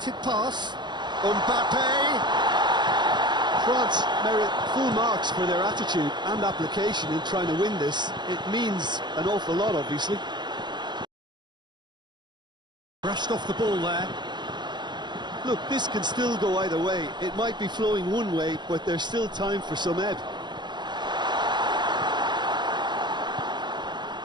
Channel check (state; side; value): late; left; 0.21 ms